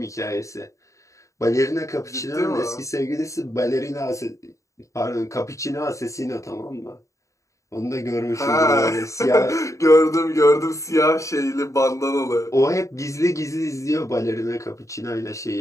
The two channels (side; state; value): right; late; 0.15 ms